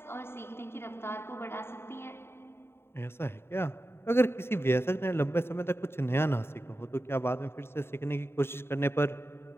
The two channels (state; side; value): late; right; 0.11 ms